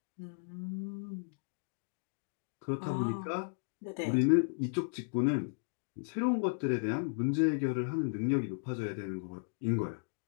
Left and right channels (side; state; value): right; silent; digital silence